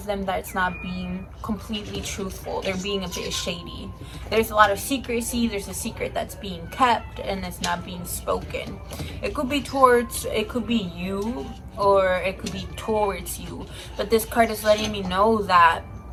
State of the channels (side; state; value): both; identical; correlation 1.00